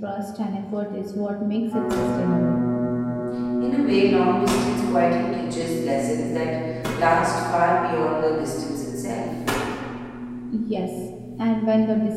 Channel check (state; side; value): identical; both; correlation 1.00